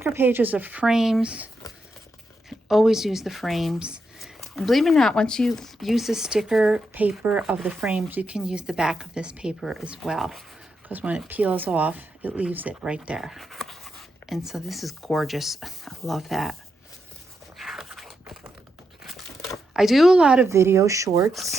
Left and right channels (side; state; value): both; normal; correlation 0.84